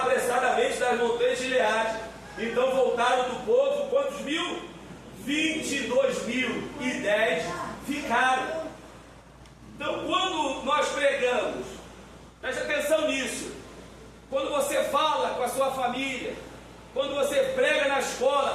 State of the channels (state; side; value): identical; both; correlation 1.00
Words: das montanhas de Gileade. Então voltaram do povo, quantos mil? 22.010 ficaram. Então quando nós pregamos, preste atenção nisso, quando você fala com a sua família, quando você prega na